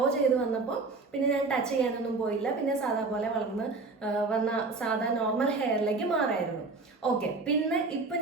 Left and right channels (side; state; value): left; quieter; 3.8 dB